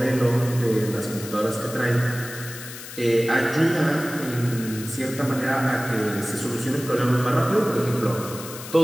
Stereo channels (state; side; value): noise; left; hiss, 12 dB below the sound